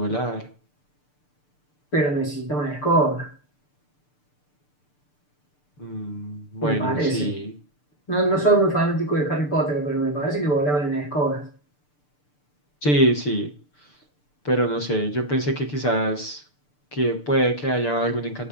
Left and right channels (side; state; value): right; late; 6.8 ms